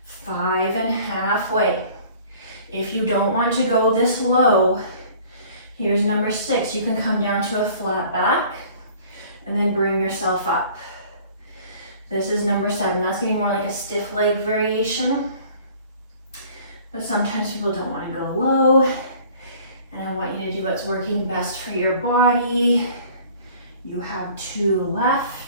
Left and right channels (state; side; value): inverted; both; correlation -0.51